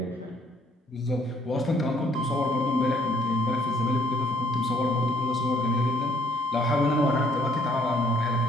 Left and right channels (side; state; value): both; normal; correlation 0.65